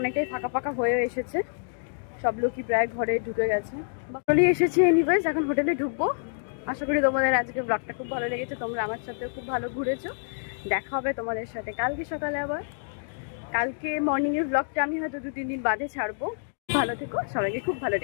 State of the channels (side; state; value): right; silent; digital silence